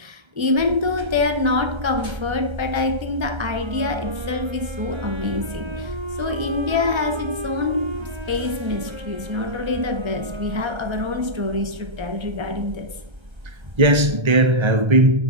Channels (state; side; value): late; left; 1.3 ms